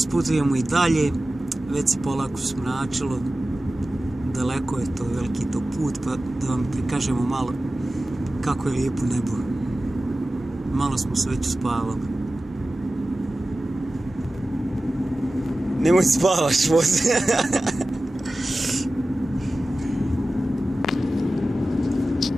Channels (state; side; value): normal; both; correlation 0.95